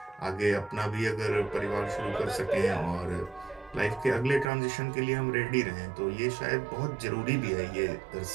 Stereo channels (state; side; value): drops out; left; at 4.5 s